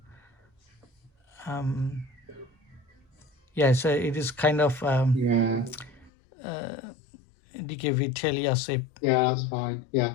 Yeah, so it is kind of DKV Telia SIP. Yeah, that's fine. Yeah,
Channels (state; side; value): drops out; right; at 6.1 s